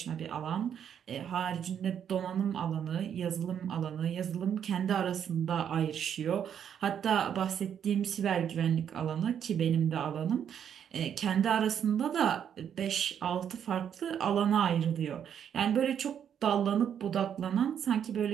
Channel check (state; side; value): quieter; left; 8.7 dB